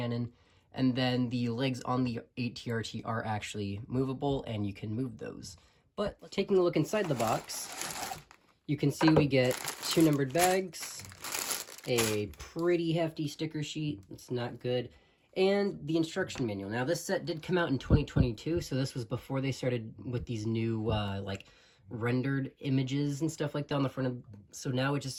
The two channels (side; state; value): both; identical; correlation 1.00